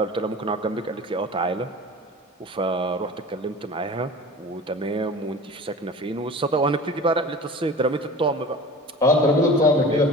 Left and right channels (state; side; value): normal; both; correlation 0.38